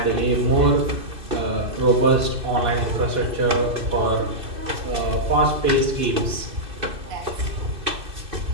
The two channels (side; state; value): left; late; 2.6 ms